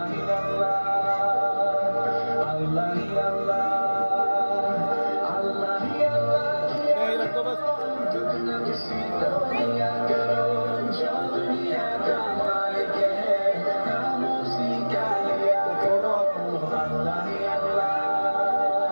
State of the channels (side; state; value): both; inverted; correlation -1.00